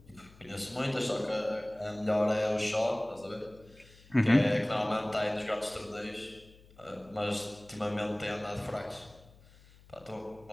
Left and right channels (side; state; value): left; noise; hum, 24 dB below the sound